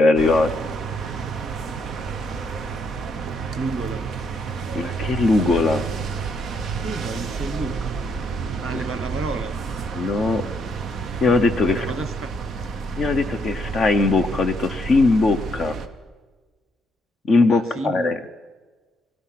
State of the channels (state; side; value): normal; both; correlation 0.74